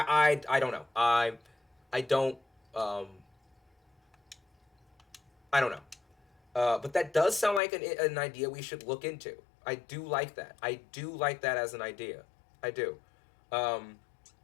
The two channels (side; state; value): right; drops out; at 7.6 s